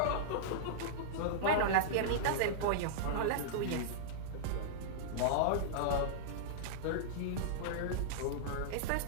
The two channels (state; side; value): different; both; correlation -0.02